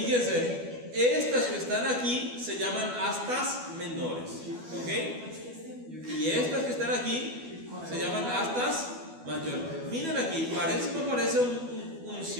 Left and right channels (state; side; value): late; left; 12 ms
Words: estas que están aquí se llaman astas menores, ¿ok? Y estas que están aquí se llaman astas mayores. Miren aquí, no parece un